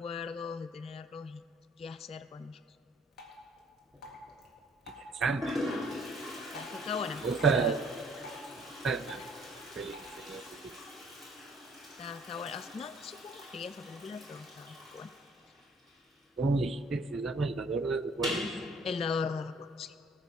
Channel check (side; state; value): both; normal; correlation 0.59